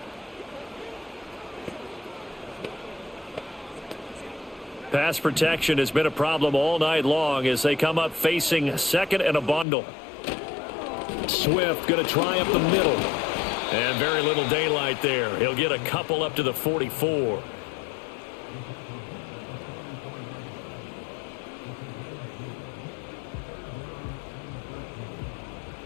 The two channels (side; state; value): right; drops out; at 9.7 s